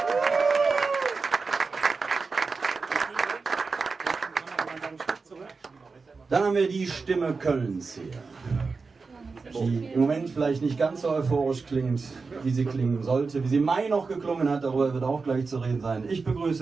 Dann haben wir die Stimme Kölns hier, die im Moment vielleicht nicht ganz so euphorisch klingt, wie sie klingen sollte, wie sie im Mai noch geklungen hat, darüber wird auch gleich zu reden sein. Ich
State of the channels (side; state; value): left; quieter; 4.4 dB